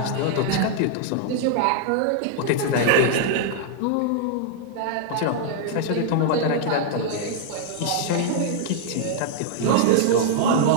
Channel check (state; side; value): different; both; correlation -0.01